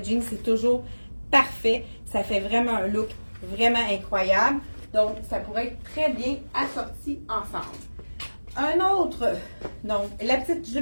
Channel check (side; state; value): both; inverted; correlation -1.00